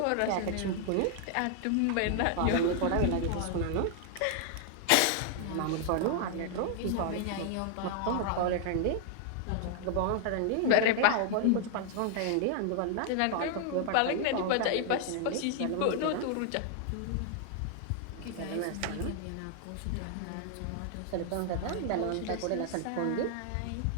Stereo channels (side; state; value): both; different; correlation 0.00